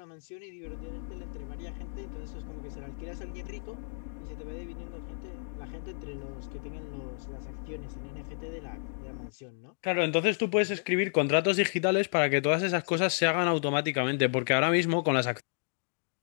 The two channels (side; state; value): right; silent; digital silence